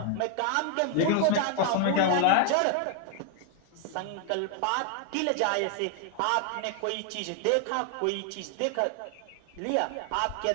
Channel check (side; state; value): both; different; correlation 0.00